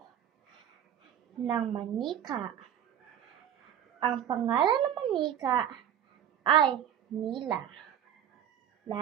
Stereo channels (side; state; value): left; quieter; 9.9 dB